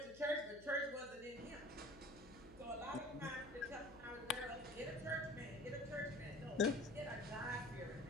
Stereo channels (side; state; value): left; noise; hum, 19 dB below the sound